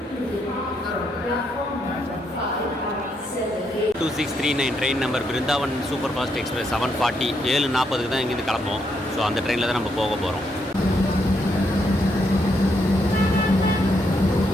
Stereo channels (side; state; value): both; normal; correlation 0.77